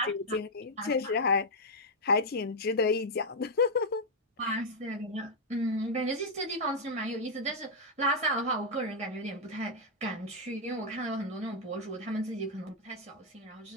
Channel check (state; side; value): normal; both; correlation -0.02